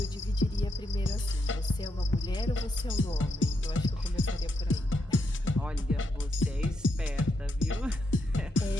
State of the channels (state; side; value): normal; both; correlation 0.81